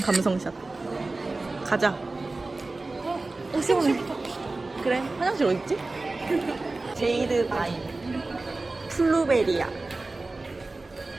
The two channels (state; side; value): quieter; left; 3.3 dB